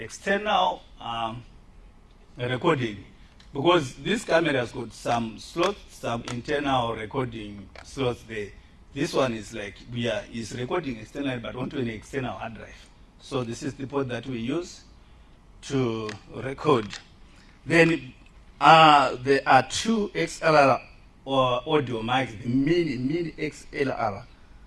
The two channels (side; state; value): both; identical; correlation 1.00